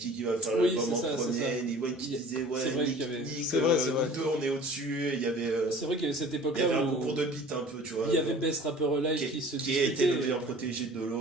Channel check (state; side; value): normal; both; correlation 0.46